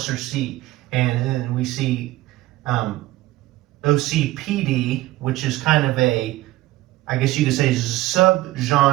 C. And then we see OCPD, which is kind of a, I guess you could say,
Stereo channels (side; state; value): left; quieter; 17.3 dB